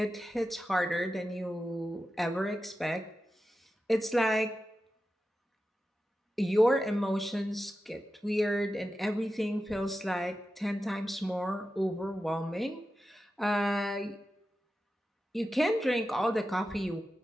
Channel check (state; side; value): normal; both; correlation 0.92